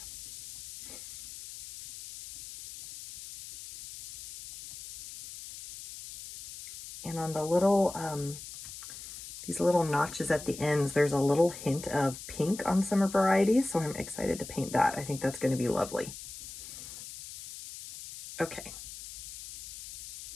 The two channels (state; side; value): noise; left; hiss, 12 dB below the sound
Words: And on the little, these little notches at the ends, there's a little hint of pink on some varieties, so I'm excited to paint that. I think that's going to be lovely. Okay.